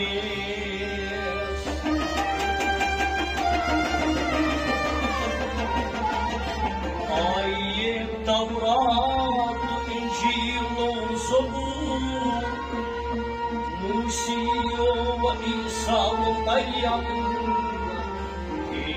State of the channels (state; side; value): identical; both; correlation 1.00